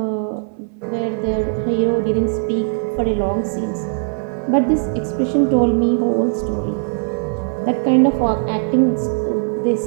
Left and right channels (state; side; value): silent; left; 60 dB below the other